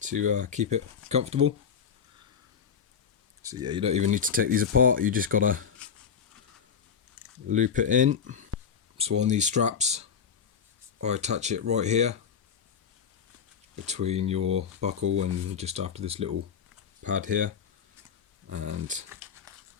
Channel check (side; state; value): right; quieter; 7.1 dB